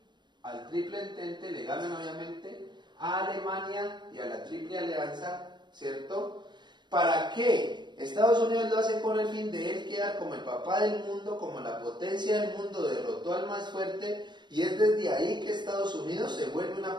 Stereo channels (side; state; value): left; late; 0.22 ms